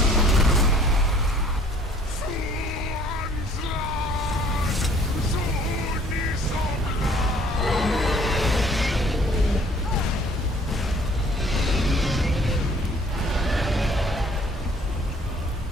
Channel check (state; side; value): normal; both; correlation 0.56